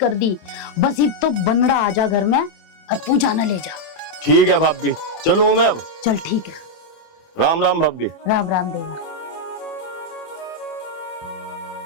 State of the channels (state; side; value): late; right; 27 ms